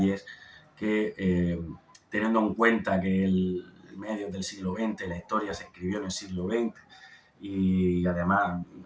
que, teniendo en cuenta que el medio del siglo XX, la historia se escribió en el siglo XX, y además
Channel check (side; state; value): both; identical; correlation 1.00